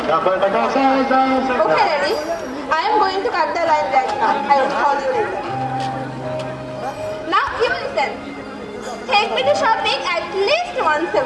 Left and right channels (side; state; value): both; identical; correlation 1.00